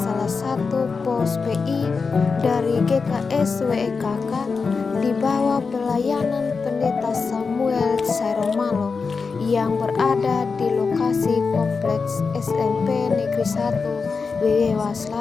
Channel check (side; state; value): right; quieter; 4.8 dB